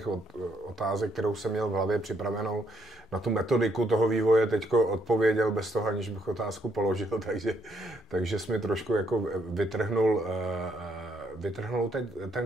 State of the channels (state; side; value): normal; both; correlation 0.73